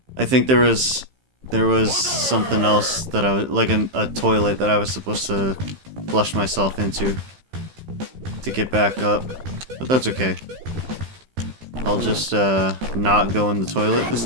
I think there was something else that I was, like a toilet that I was supposed to flush myself into to get back up. But that's okay. I'll just not go in the toilet this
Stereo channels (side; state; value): left; late; 15 ms